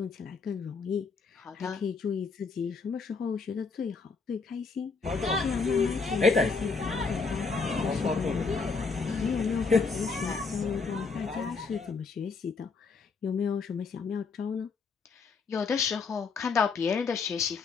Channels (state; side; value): quieter; right; 4.8 dB